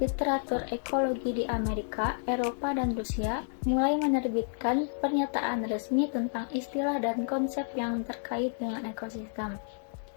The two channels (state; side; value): silent; right; digital silence